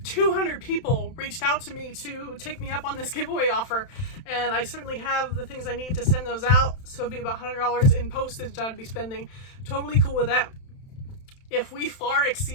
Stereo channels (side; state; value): right; late; 31 ms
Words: 200 people reached out to me to take me up on this giveaway offer, and I certainly have the things I need to send those out, so it'd be about $100 in postage I'd be spending. Totally cool with that. If we far